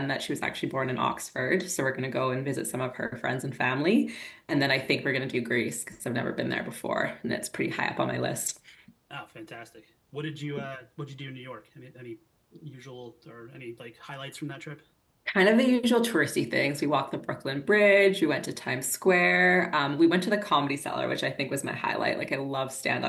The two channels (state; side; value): identical; both; correlation 1.00